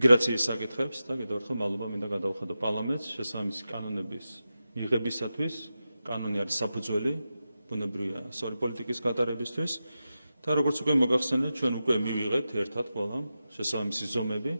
საკითხებს და კიდევ ერთხელ მადლობა მინდა გადავხადო პარლამენტს შესაბამისი კანონების მიღებისათვის. კანონი არის საფუძველი ბუნებრივია სწორი პოლიტიკის გატარებისთვის და როგორც უკვე მოგახსენეთ, ჩვენ უკვე მივიღეთ ერთად ყველა შესაბამისი ზომები,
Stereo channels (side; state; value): both; inverted; correlation -0.92